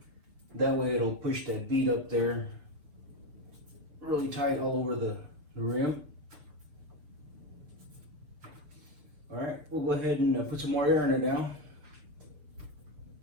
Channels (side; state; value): left; late; 6.8 ms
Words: That way it'll push that bead up there really tight all over the rim. All right, we'll go ahead and put some more air in it now.